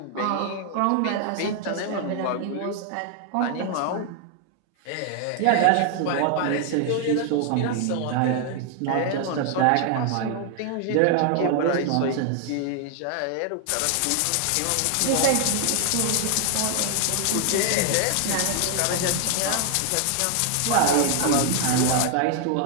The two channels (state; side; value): different; both; correlation 0.00